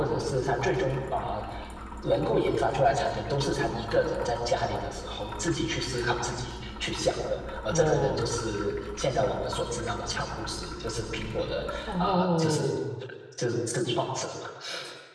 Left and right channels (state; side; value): identical; both; correlation 1.00